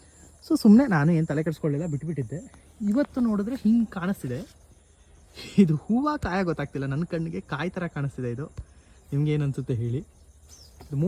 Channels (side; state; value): both; identical; correlation 1.00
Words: ಸೊ ಸುಮ್ಮನೆ ನಾನು ಏನು ತಲೆ ಕೆಡಿಸ್ಕೊಳ್ಳಿಲ್ಲ, ಬಿಟ್ಬಿಟ್ಟಿದ್ದೆ. ಇವತ್ತು ನೋಡಿದ್ರೆ ಹಿಂಗೆ ಕಾಣಿಸ್ತಿದೆ. ಇದು ಹೂವು ಕಾಯ ಗೊತ್ತಾಗ್ತಿಲ್ಲ, ನನ್ನ ಕಣ್ಣಿಗೆ ಕಾಯಿ ಥರ ಕಾಣಿಸ್ತಿದೆ. ಇದು ನಿಮ್ಗೇನು ಅನಿಸುತ್ತೆ ಹೇಳಿ. ಇದು